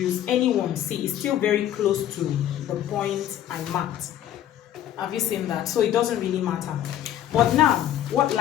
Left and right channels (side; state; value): right; quieter; 11.5 dB